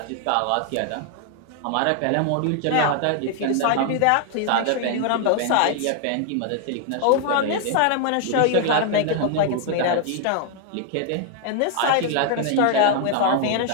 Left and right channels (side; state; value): both; different; correlation 0.00